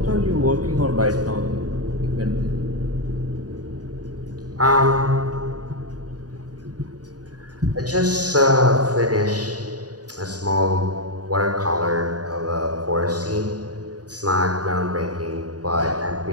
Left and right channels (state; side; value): late; left; 0.68 ms